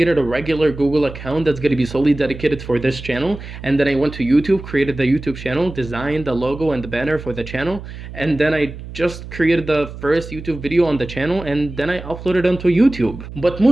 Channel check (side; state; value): right; noise; hum, 12 dB below the sound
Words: a regular Google account that's going to be solely dedicated for this channel, and then I went to YouTube, created the YouTube channel, designed the logo and the banner for the channel, and then I just created the first YouTube video on the channel, and then I uploaded it onto YouTube. But